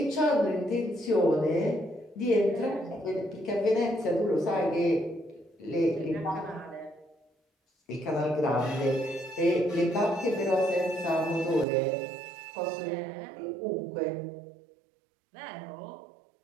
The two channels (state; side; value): drops out; left; at 11.7 s